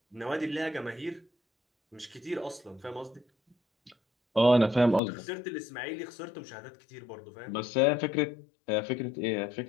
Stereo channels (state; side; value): drops out; right; at 5.0 s